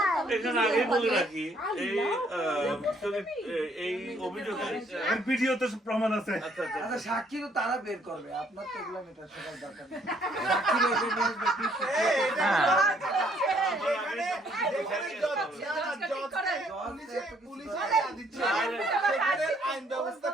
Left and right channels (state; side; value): normal; both; correlation 0.66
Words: এখানে আগে বলে রাখি এই অভিযোগে আর ভিডিওতে প্রমাণ আছে। আচ্ছা আচ্ছা আচ্ছা সাক্ষী তো তারা বের করবে, আপনার তো এগুলো মেটার সবার দরকার নেই। সাক্ষী বের করে নিয়ে আসবে, please। যেখানে পুলিশে দিচ্ছে, সেখানে আইন ব্যবস্থা